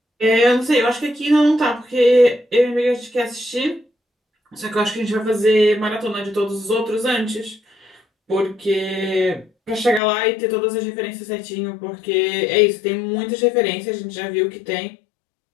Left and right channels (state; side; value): drops out; right; at 10.0 s